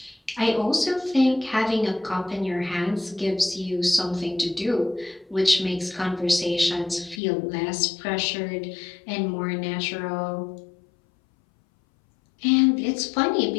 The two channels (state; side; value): drops out; right; at 7.2 s